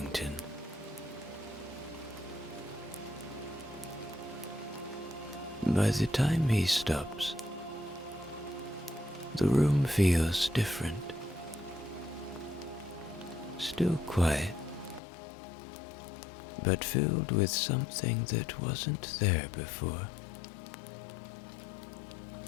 By the time he stops, the room feels different. Still quiet, but filled with something that wasn't there before.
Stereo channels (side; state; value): right; drops out; at 15.0 s